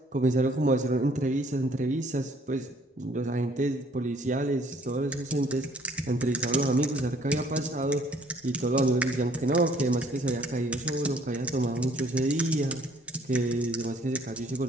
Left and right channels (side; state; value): both; normal; correlation 0.60